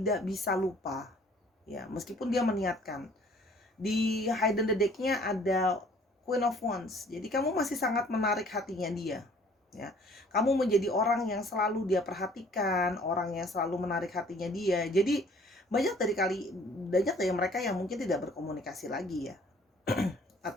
bisa lupa ya, meskipun dia meniatkan. Di hidden the deck-nya ada Queen of Wands, jadi kamu masih sangat menarik hatinya dia ya. Kamu menjadi orang yang selalu dia perhatikan, orang yang selalu menarik hatinya dia. Jadi banyak dari mereka yang mungkin tidak berkomunikasi lagi ya.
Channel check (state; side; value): normal; both; correlation 0.56